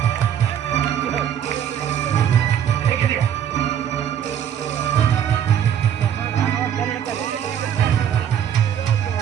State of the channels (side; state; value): left; quieter; 9.3 dB